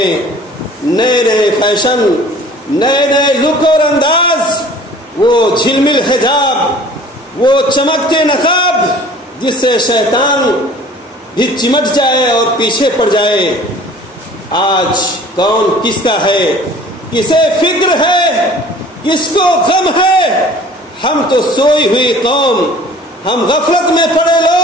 نئے نئے فیشن، نئے نئے لک اور انداز، وہ جھلمل حجاب، وہ چمکتے نقاب جس سے شیطان بھی چمٹ جائے اور پیچھے پڑ جائے۔ آج کون کس کا ہے، کسے فکر ہے، کس کو غم ہے؟ ہم تو سوئی ہوئی قوم، ہم غفلت میں پڑے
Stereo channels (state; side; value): normal; both; correlation 0.48